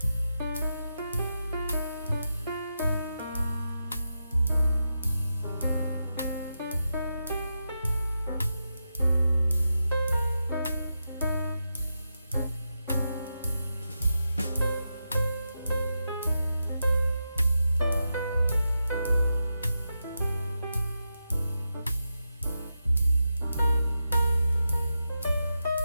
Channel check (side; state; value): both; inverted; correlation -0.88